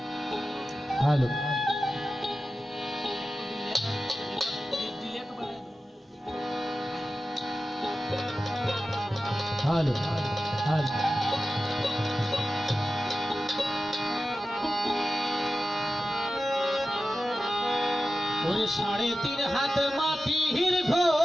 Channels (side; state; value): both; normal; correlation 0.94